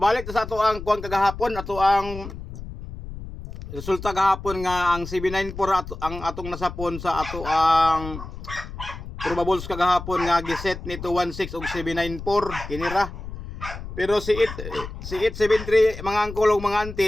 sa ato ang kuan kagahapon, ato ang resulta gahapon nga ang 794 ang atong nasapon sa ato ang probables kagahapon nga giset ni 216 og 794 kinira. Pero si 873 mga angkol ug mga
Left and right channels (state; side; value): noise; left; rumble, 11 dB below the sound